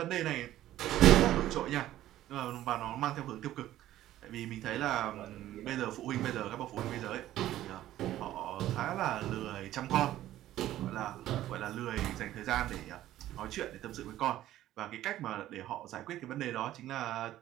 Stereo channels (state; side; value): quieter; left; 13.7 dB